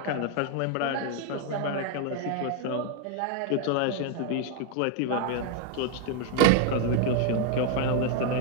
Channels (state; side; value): different; both; correlation 0.01